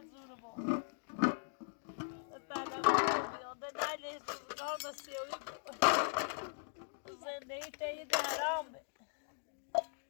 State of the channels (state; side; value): silent; right; digital silence